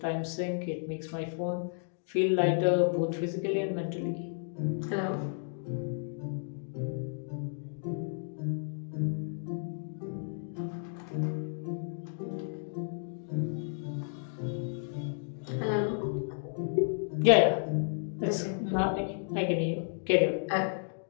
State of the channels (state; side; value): silent; right; digital silence